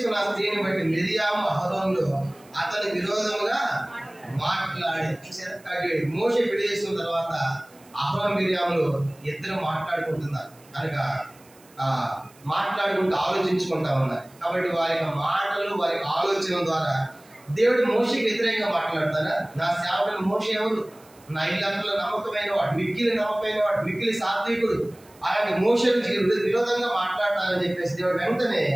స్త్రీని బట్టి మిరియాము అహరోనులు అతని విరోధముగా మాట్లాడి. మోషే పెళ్లి చేసుకున్న తర్వాత అహరోను మిరియాములు ఇద్దరు మాట్లాడుకుంటున్నారు కనుక మాట్లాడుకుంటూ ఆలోచించుకుంటా ఉన్నారు. కాబట్టి వారి మాటలు వారి ఆలోచన ద్వారా దేవుడు మోషేకి వ్యతిరేకంగా మాట్లాడతారా? నా సేవకుడు మోషే ఎవరు? నా ఇల్లంతలో నమ్మకమైన వాడు, మిక్కిలి నమ్మకమైన వాడు, మిక్కిలి సాత్వికుడు, అలాంటి మోషేకి విరోధంగా మాట్లాడతారని చెప్పేసి దేవుడు వెంటనే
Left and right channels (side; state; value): right; noise; hiss, 27 dB below the sound